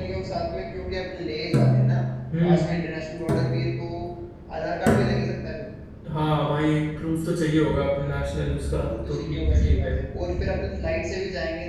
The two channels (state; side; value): identical; both; correlation 1.00